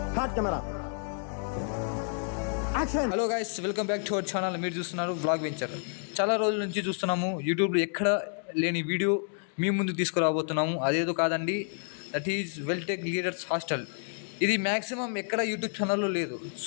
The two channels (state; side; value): silent; right; 56 dB below the other